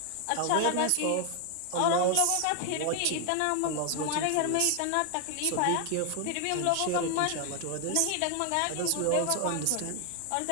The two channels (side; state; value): both; different; correlation 0.00